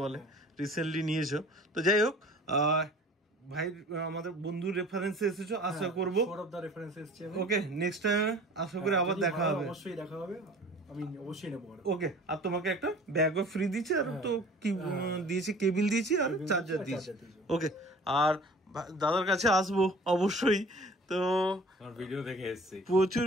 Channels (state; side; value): normal; both; correlation 0.46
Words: বলে, রিসেন্টলি নিয়েছো। তো যাই হোক, ভাই আমাদের বন্ধুর রেফারেন্সে এসেছো, আশা করবো। ওকে, নেক্সট টাইম আশা করি আবার দেখা হবে। অবশ্যই দেখা হবে, আমি অবশ্যই নেব। ওকে, আর তোমাকে একটা ব্যাগও ফ্রি দিয়েছি, আর তো কি দিয়েছি, কেবিল দিয়েছি আর চার্জার দিয়েছি। ওকে, আর দাদার কাছে আসবো অবশ্যই। তো ভিডিও দেখে এসেছি, প্রচুর